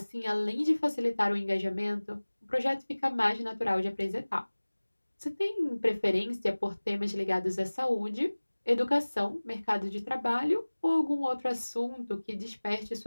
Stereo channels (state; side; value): inverted; both; correlation -1.00